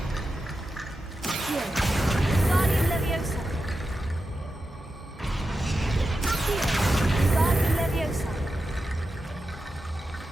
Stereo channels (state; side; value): normal; both; correlation 0.90